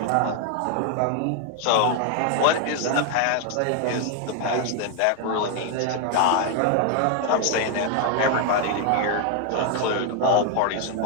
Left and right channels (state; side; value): different; both; correlation 0.00